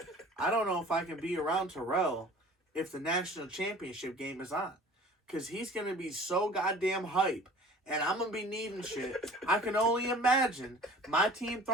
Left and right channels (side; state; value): both; normal; correlation 0.46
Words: I don't know if I can be around Terrell if the national championship game is on. Because he's going to be so goddamn hype. And I'm going to be needing shit. I can only imagine my team